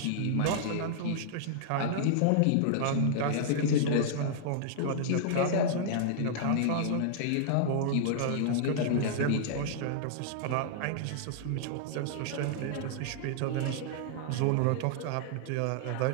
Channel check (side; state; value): both; different; correlation -0.01